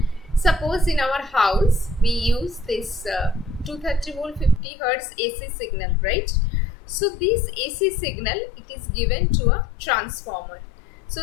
Suppose in our house we use this 230 volt 50 hertz AC signal, right? So this AC signal, it is given to a transformer.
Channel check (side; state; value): right; drops out; at 4.6 s